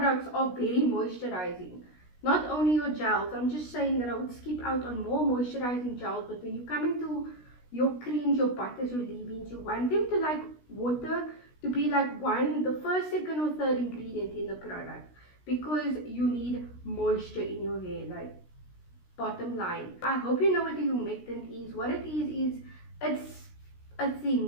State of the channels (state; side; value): late; right; 16 ms